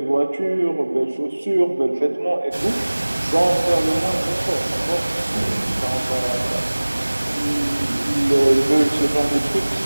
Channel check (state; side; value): inverted; both; correlation -1.00